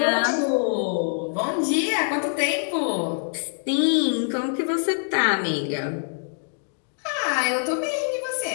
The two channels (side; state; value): right; silent; 62 dB below the other